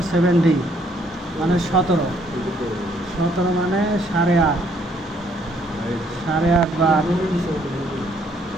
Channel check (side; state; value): both; normal; correlation 0.67